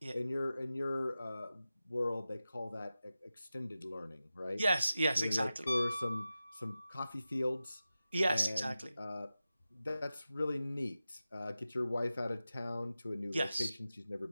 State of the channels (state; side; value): inverted; both; correlation -0.94